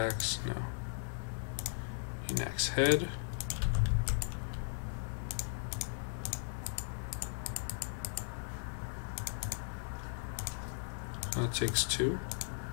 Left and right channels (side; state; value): right; silent; 53 dB below the other